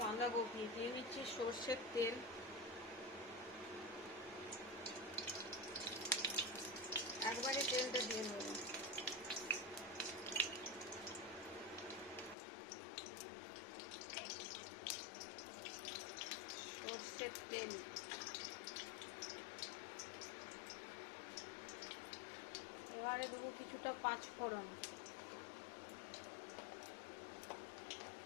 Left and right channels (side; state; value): right; drops out; at 12.4 s